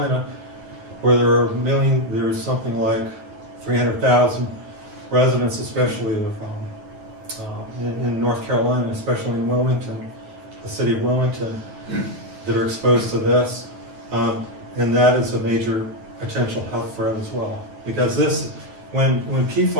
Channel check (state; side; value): late; left; 9.4 ms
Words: where there's something like 300,000 residents, especially in North Carolina, especially in Wilmington, the city of Wilmington, that are exposed to this. And that is a major potential health threat as well. Because this, when